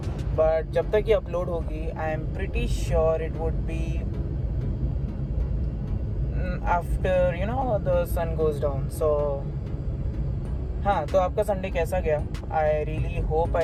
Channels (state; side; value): identical; both; correlation 1.00